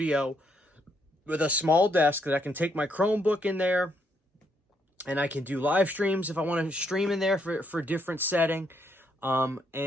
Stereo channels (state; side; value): normal; both; correlation 0.74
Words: with a small desk that I can take my Chromebook in there, and I can do live streams if I want to stream in there for different setting.